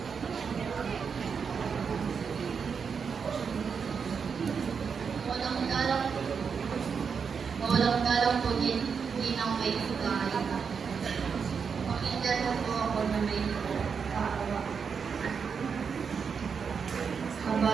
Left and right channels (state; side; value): quieter; left; 6.1 dB